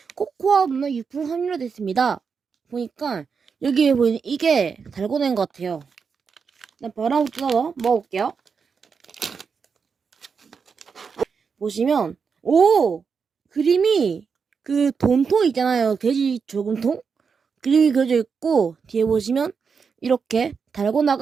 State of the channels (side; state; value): left; quieter; 5.8 dB